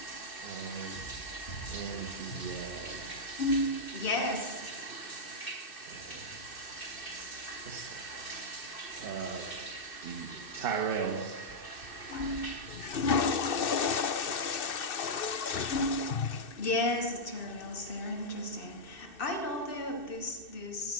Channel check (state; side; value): late; right; 2.6 ms